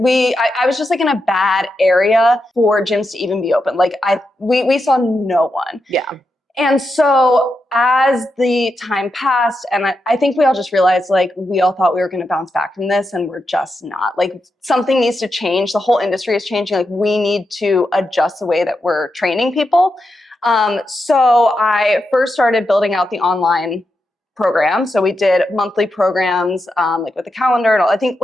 was just like in a bad area for gyms to even be open. Like we saw no one. Yeah. And so as the time passed, and I think we all just realized like we all thought we were going to bounce back from this and we're just not. Like something needs to change. The whole industry is changing. Like we need to adjust the way that we're training people. So I first started building out the online program. So we did monthly programs like with the calendar and all. I think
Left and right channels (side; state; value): both; normal; correlation 0.87